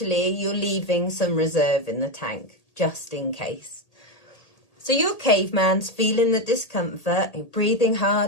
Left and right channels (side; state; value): right; late; 1.8 ms